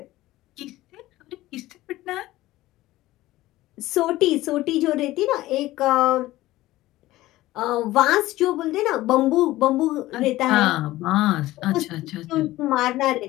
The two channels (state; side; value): quieter; right; 16.8 dB